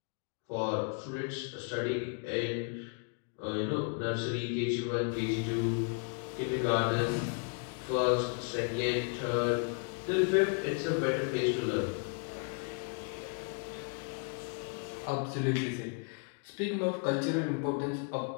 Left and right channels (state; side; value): quieter; right; 39.5 dB